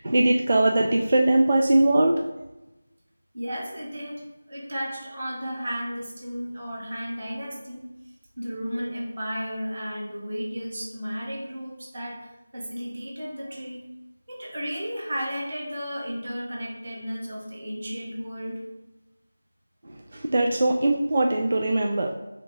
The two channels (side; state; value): both; inverted; correlation -0.95